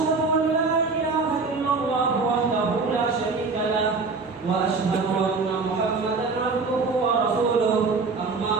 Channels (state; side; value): quieter; left; 4.2 dB